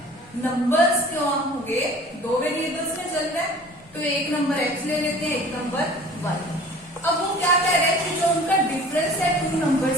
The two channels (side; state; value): both; normal; correlation 0.46